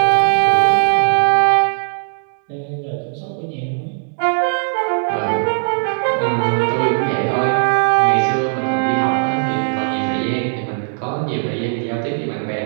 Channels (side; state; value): left; silent; digital silence